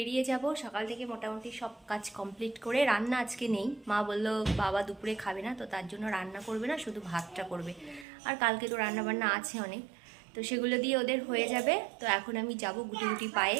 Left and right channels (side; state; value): left; drops out; at 8.1 s